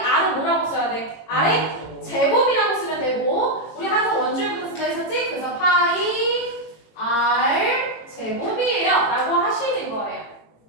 뭐라고 써야 돼? R의 제곱이라고 쓰면 되고 우리 항상 원줄부터 쓴다 했었지? 그래서 파이 R 제곱이에요 라고 하시는 거예요.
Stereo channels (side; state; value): right; late; 18 ms